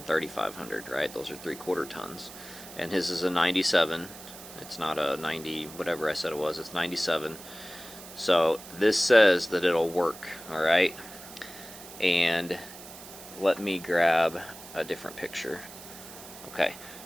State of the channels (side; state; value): right; noise; hiss, 15 dB below the sound